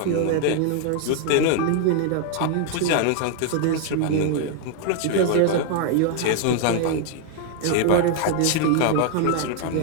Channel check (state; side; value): different; both; correlation 0.00